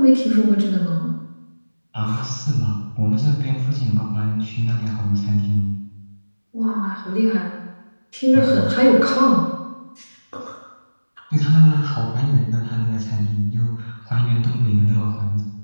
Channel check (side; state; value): both; inverted; correlation -1.00